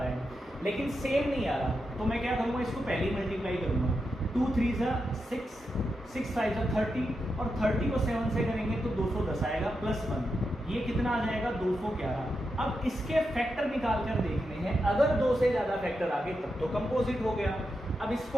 है, लेकिन सेम नहीं आ रहा, तो मैं क्या करूँगा, इसको पहले ही मल्टीप्लाई करूँगा। 2 × 3 = 6, 6 × 5 = 30, और 30 को 7 से करेंगे तो 210 आएगा, +1, ये कितना आ जाएगा 211। अब इसके फैक्टर निकाल कर देखने हैं, अगर 2 से ज़्यादा फैक्टर आ गए तब तो कंपोजिट हो गया। अब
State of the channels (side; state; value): both; normal; correlation 0.87